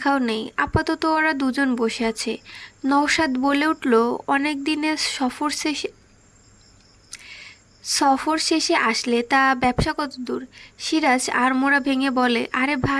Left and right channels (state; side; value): identical; both; correlation 1.00